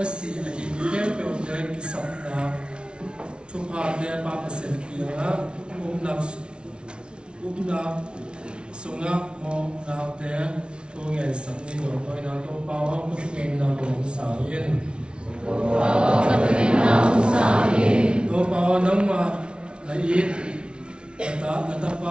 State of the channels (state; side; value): late; left; 0.057 ms